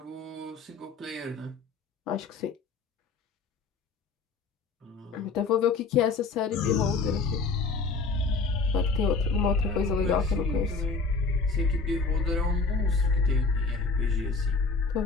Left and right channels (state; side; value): quieter; right; 4.4 dB